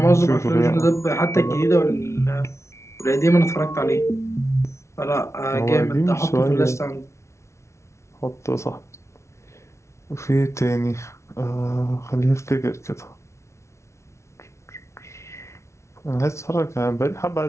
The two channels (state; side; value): late; right; 0.13 ms